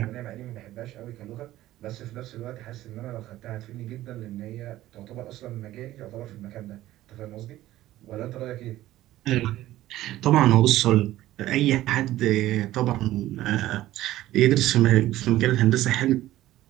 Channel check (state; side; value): quieter; left; 15.0 dB